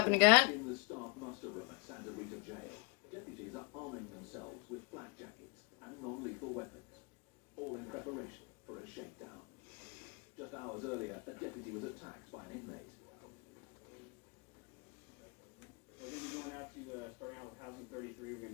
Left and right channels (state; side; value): quieter; right; 28.7 dB